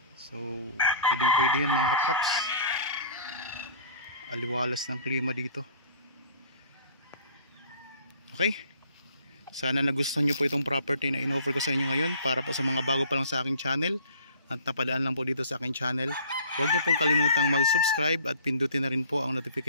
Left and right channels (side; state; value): both; inverted; correlation -0.48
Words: So pwede yan mga kapraps. Aliwalas ng klima dito. Okay, sana nagustuhan nyo po itong property na in-offer ko sa inyo ngayon para po sa mga bago pa lang sa aking channel at napadaan lang po dito sa aking channel. Huwag niyo pong kalimutang mag-subscribe at pindutin na rin po ang